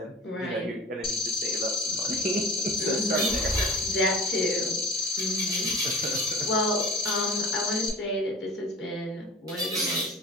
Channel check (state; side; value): normal; both; correlation 0.39